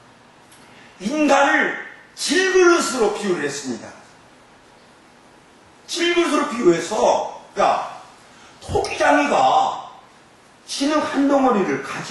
인간을 질그릇으로 비유를 했습니다. 질그릇으로 비유해서, 토기장이가 진흙 한 덩어리를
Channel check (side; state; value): both; identical; correlation 1.00